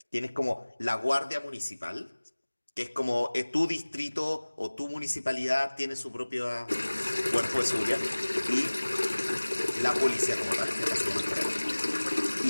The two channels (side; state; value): both; inverted; correlation -1.00